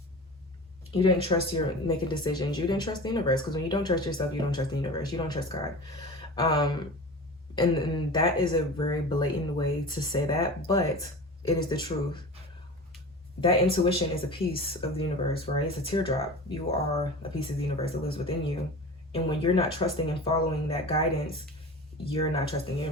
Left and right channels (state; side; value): normal; both; correlation 0.34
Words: You didn't trust your making decisions. You didn't trust the universe, because when you don't trust yourself, you don't trust the universe. You don't trust God. And that is a very blatant way to say that, but it is the truth. That intuition is a piece of the universe, right? It's a teardrop. You are a piece of the universe that lives within you. And when you're not trusting and following that guidance, you're not trusting the